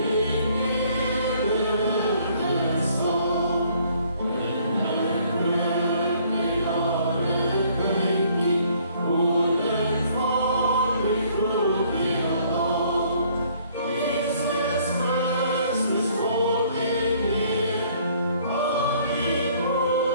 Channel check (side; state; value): both; inverted; correlation -0.61